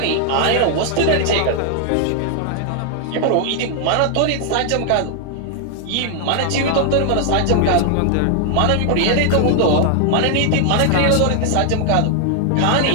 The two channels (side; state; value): both; different; correlation 0.00